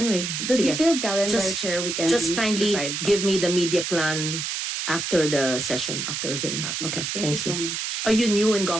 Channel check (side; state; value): right; noise; hiss, 3 dB below the sound